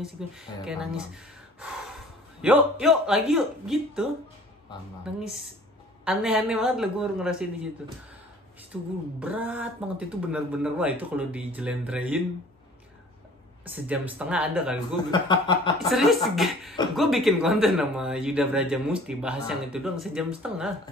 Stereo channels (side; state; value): both; normal; correlation 0.50